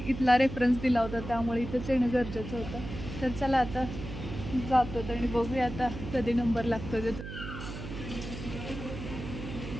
इथला रेफरन्स दिला होता त्यामुळे इथंच येणं गरजेचं होतं तर चला आता जातो आणि बघूया आता कधी नंबर लागतो ते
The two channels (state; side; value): noise; right; hum, 9 dB below the sound